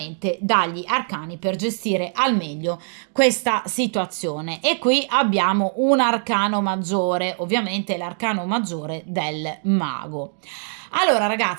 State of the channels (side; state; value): left; silent; digital silence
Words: dagli arcani per gestire al meglio questa situazione, e qui abbiamo un arcano maggiore, ovviamente l'arcano maggiore del mago. Allora